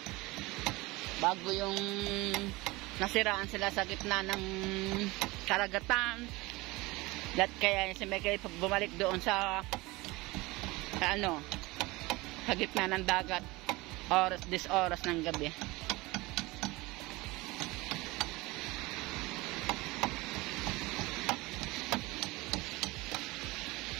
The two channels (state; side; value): quieter; left; 22.0 dB